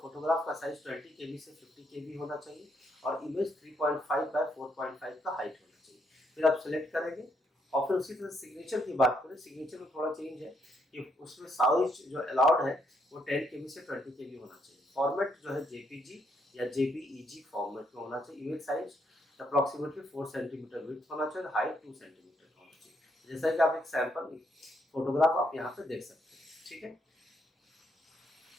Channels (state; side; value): normal; both; correlation 0.74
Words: का साइज 20 KB से 50 KB होना चाहिए और इमेज 3.5 बाय 4.5 का हाइट होना चाहिए। फिर आप सिलेक्ट करेंगे और फिर उसी तरह सिग्नेचर की बात करें, सिग्नेचर में थोड़ा चेंज है कि उसमें साइज जो अलाउड है वो 10 KB से 20 KB होना चाहिए। फॉर्मेट जो है JPG या JPEG फॉर्मेट में होना चाहिए। Image size approximately 4 centimetre width होना चाहिए, हाइट 2 सेंटीमीटर। जैसा कि आप एक सैंपल फोटोग्राफ आप यहाँ पे देख सकते हैं, ठीक है।